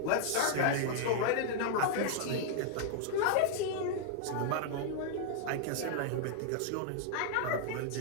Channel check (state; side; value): different; both; correlation -0.01